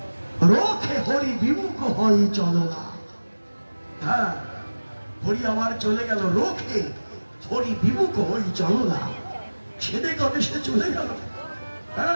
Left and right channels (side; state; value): both; inverted; correlation -1.00